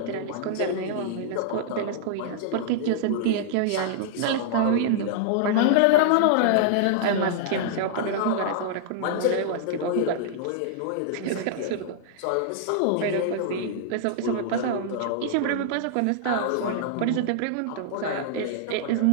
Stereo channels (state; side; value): different; both; correlation -0.01